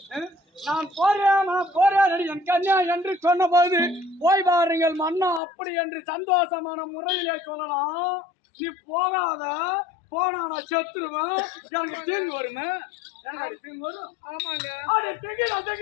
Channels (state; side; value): drops out; right; at 5.4 s